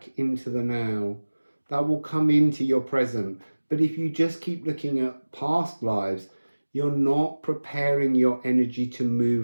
into the now. That will come into your present. But if you just keep looking at past lives, you're not preparing your energy to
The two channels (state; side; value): inverted; both; correlation -1.00